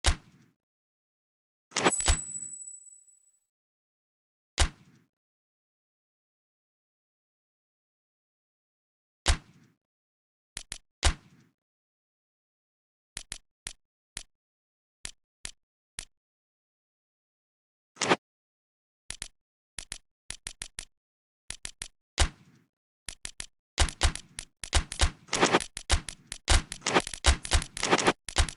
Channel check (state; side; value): identical; both; correlation 1.00